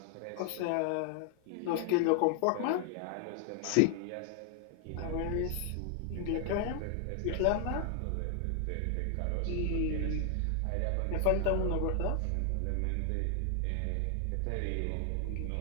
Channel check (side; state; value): both; different; correlation 0.00